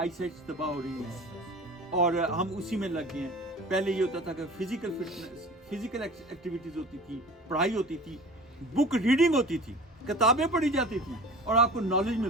سائٹس تباہ ہو رہی ہیں اور ہم اسی میں لگ گئے ہیں. پہلے یہ ہوتا تھا کہ فزیکل فٹنس, فزیکل ایکٹیویٹیز ہوتی تھی, پڑھائی ہوتی تھی, بک ریڈنگ ہوتی تھی, کتابیں پڑھی جاتی تھیں اور آپ کو نالج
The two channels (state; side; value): normal; both; correlation 0.40